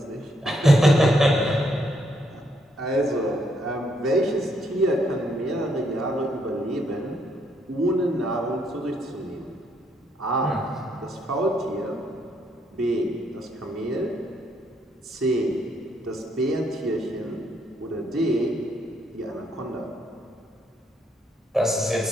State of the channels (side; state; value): both; normal; correlation 0.73